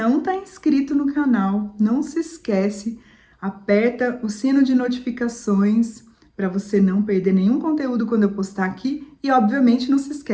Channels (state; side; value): identical; both; correlation 1.00